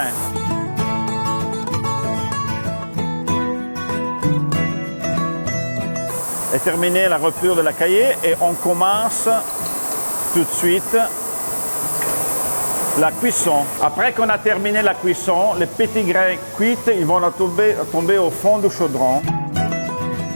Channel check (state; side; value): inverted; both; correlation -1.00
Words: Et terminer la rupture de la caillée et on commence tout de suite la cuisson. Après qu'on a terminé la cuisson, les petits grains cuits, ils vont tomber au fond du chaudron.